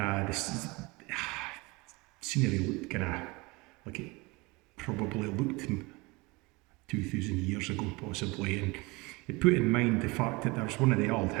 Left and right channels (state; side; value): quieter; left; 24.8 dB